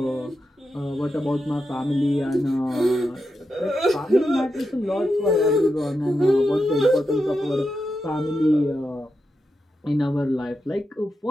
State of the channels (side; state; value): both; normal; correlation 0.87